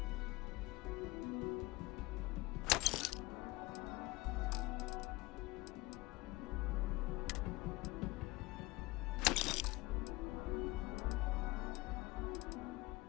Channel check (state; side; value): quieter; right; 21.6 dB